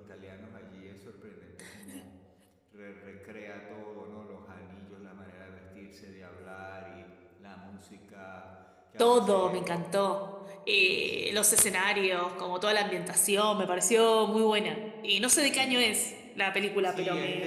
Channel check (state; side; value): identical; both; correlation 1.00